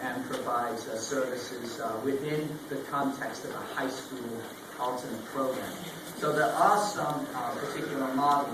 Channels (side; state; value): both; identical; correlation 1.00